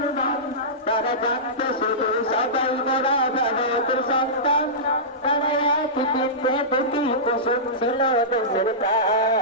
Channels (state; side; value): normal; both; correlation -0.17